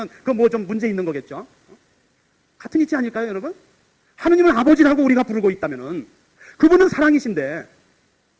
그 뭐 좀 문제 있는 거겠죠? 같은 이치 아닐까요, 여러분? 하느님을 아버지라고 우리가 부르고 있다면은 그분은 사랑이신데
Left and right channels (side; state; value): both; identical; correlation 1.00